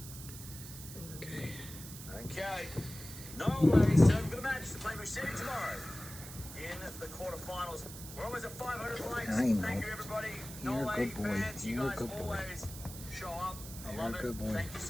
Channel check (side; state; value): right; noise; hiss, 12 dB below the sound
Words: Okay. Okay. Norway served for the match to play Musetti tomorrow in the quarterfinals. We're almost at 500 likes. I know. Thank you, everybody. You're a Norway good boy. fans, you You're a guys good boy. always show up. I You're love a it. good boy. Thank you